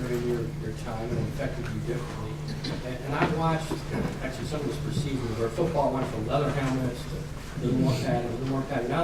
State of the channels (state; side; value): identical; both; correlation 1.00